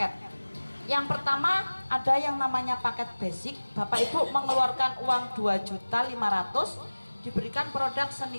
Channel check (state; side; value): inverted; both; correlation -1.00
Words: Yang pertama ada yang namanya paket basic. Bapak Ibu mengeluarkan uang 2.500.000, diberikan produk